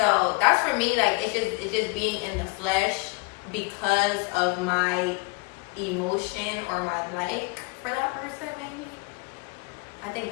that's for me, like it's just being in the flesh because of my emotion or my like for that person, maybe. I think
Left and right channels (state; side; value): quieter; right; 29.1 dB